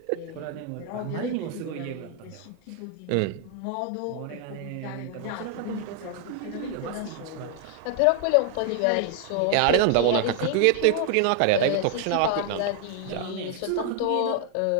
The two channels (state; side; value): different; both; correlation 0.00